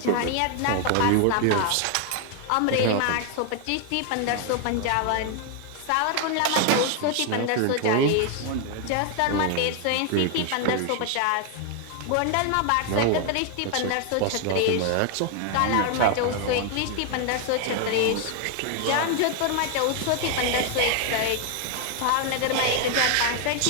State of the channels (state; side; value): different; both; correlation 0.00